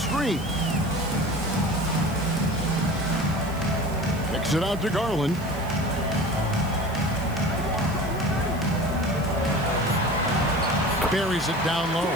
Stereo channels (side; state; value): right; noise; hiss, 20 dB below the sound